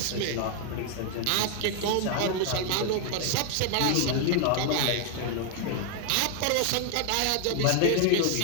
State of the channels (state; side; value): different; both; correlation 0.00